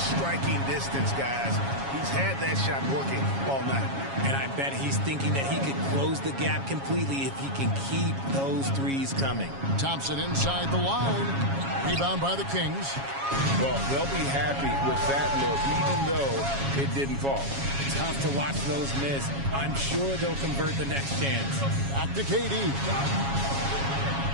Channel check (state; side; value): late; left; 7.3 ms